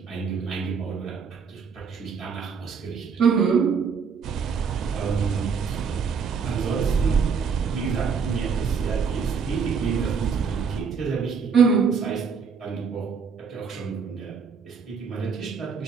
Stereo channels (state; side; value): quieter; left; 5.9 dB